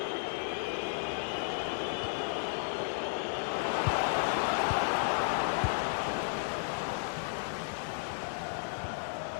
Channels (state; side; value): silent; right; digital silence